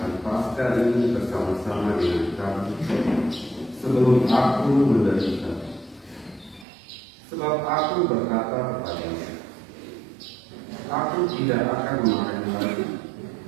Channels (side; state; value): left; drops out; at 6.7 s